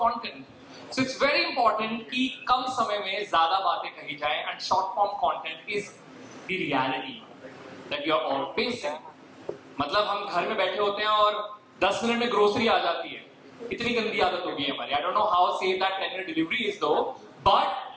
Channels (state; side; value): identical; both; correlation 1.00